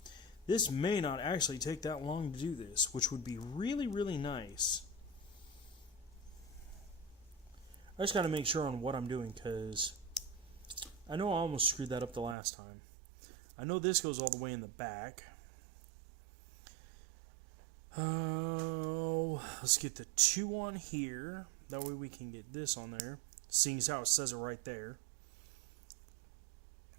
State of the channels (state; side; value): drops out; left; at 12.4 s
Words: this may not actually take that long to do this, which would be really, really nice. I just got to make sure on what I'm doing, because I know I almost screwed that up the last time. I know this goes all the way in the back. Oh, let's get the 2 on here. That way we can get this on there, seeing as how it says it right there.